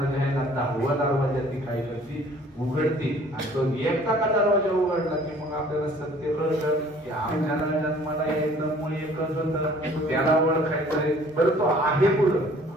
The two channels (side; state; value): both; normal; correlation 0.54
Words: जे आहे ना 10वा दरवाजा ती काय करते उघडते आणि तो एकदा का दरवाजा उघडला की मग आपल्याला सत्य कळतं की आपल्याला जन्माला यायचं मूळ एकच होतं, त्याला ओळखायचंय बरं तो आहे कुठं.